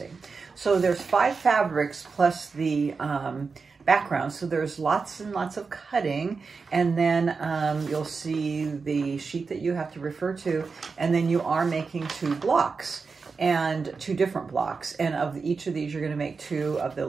So there's 5 fabrics plus the background, so there's lots and lots of cutting, and then you'll see the sheet that you have to refer to, and then you are making 2 blocks. And 2 different blocks, and of each of these you're going to make 2 of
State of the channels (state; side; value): quieter; left; 4.8 dB